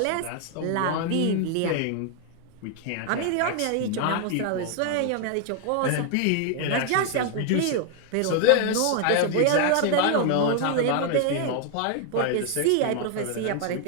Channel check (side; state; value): both; different; correlation 0.00